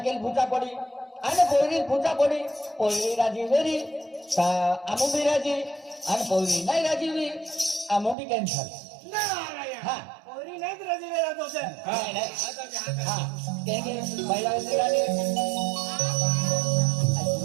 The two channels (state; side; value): drops out; left; at 8.2 s